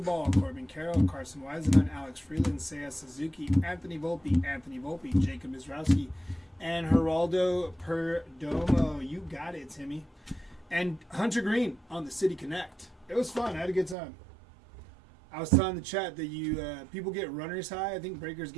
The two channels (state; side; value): drops out; left; at 14.0 s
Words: Corbin Carroll, Carson Weisenhunt, Alex Freeland, Seiya Suzuki, Anthony Volpe, Jacob Mizrowski, and Geraldo Perdomo. You got it, Timmy. And Hunter Green on the City Connect. It was fun. I had a good time. I was telling the chat that people get runner's high. I think breakers